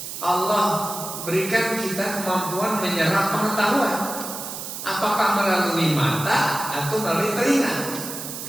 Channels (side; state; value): right; noise; hiss, 8 dB below the sound